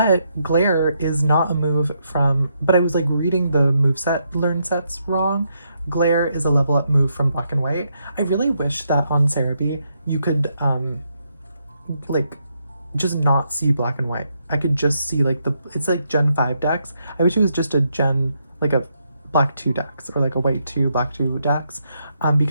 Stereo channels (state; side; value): inverted; both; correlation -0.78